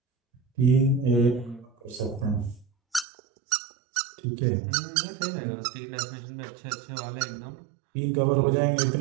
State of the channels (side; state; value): left; drops out; at 3.1 s